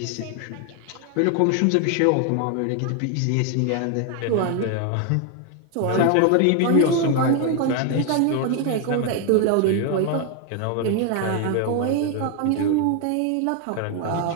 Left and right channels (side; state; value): both; different; correlation 0.01